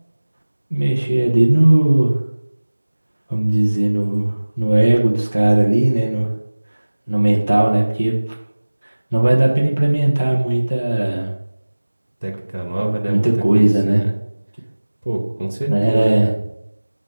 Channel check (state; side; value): inverted; both; correlation -1.00